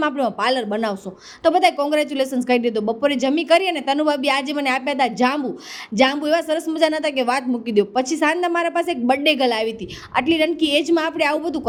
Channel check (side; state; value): both; identical; correlation 1.00